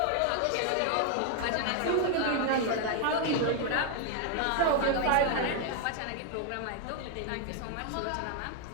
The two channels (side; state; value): both; different; correlation 0.00